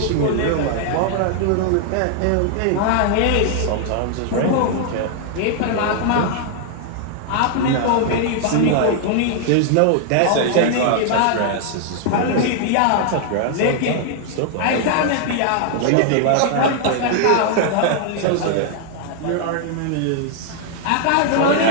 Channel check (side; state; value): both; different; correlation 0.00